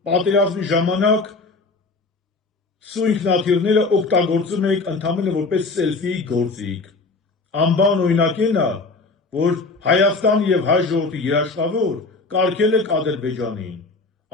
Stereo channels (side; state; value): right; quieter; 3.7 dB